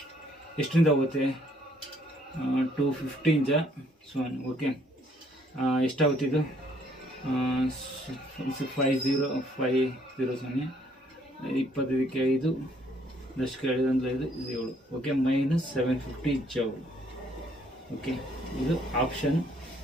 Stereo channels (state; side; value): normal; both; correlation 0.65